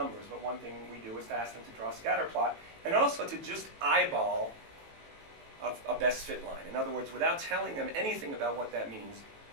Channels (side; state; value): left; late; 18 ms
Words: but one thing we do is to ask them to draw a scatter plot, and also to just eyeball a best fit line. In other words, without telling them anything about what that means,